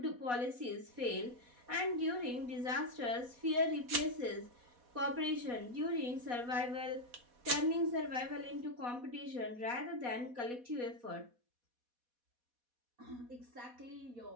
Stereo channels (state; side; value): late; left; 4.1 ms